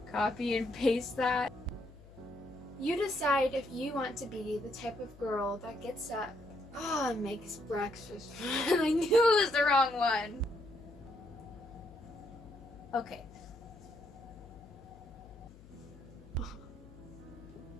copy and paste that? You decide if you want to be the type of girl that gets up, and makes breakfast. I knew it was the wrong one. Okay.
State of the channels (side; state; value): left; noise; hum, 21 dB below the sound